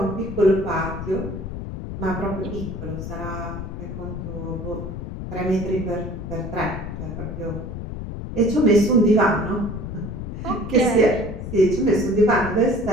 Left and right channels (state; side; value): noise; left; rumble, 7 dB below the sound